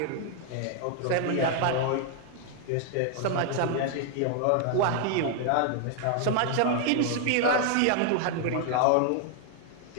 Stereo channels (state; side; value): different; both; correlation 0.00